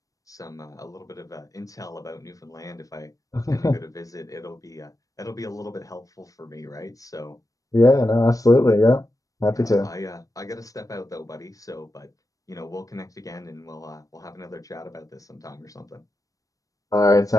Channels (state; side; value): late; right; 0.16 ms